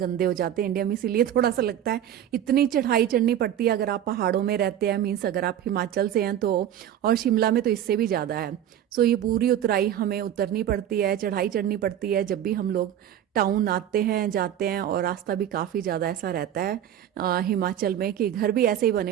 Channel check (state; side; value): quieter; left; 10.7 dB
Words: हो जाते हैं इंडिया में, इसीलिए थोड़ा सा लगता है इतनी चढ़ाई चढ़नी पड़ती है अगर आप पहाड़ों में रहते हैं, मीन्स अगर आप हिमाचल से हैं तो। और शिमला में तो इससे भी ज़्यादा है। सो ये पूरी उतराई हमें उतरनी पड़ती है, चढ़ाई चढ़नी पड़ती है जब भी हम लोग टाउन आते हैं जाते हैं। और रास्ता भी काफ़ी ज़्यादा ऐसा रहता है हिमाचल में कि घर भी ऐसे ही बने